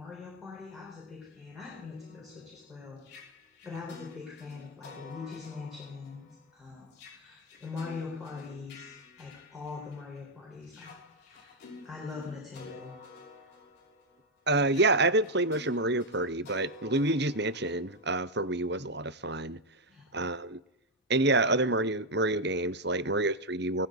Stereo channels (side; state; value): both; normal; correlation 0.02